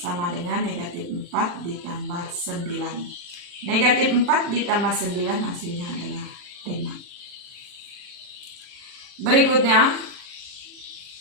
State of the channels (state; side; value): late; left; 40 ms